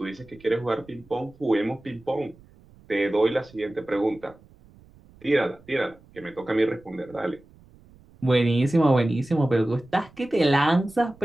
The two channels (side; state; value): right; noise; rumble, 26 dB below the sound